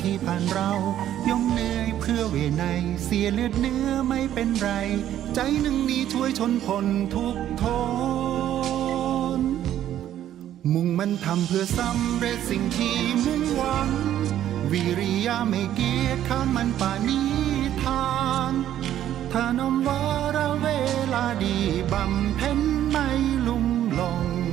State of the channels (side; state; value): left; quieter; 11.6 dB